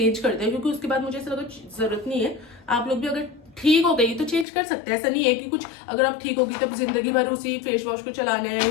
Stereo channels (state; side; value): drops out; right; at 4.5 s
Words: कर दिया, क्योंकि उसके बाद मुझे ऐसा लगा जरूरत नहीं है। आप लोग भी अगर ठीक हो गई तो चेंज कर सकते हैं, ऐसा नहीं है कि कुछ अगर आप ठीक होगी तब जिंदगी भर उसी फेस वॉश को चलाना है,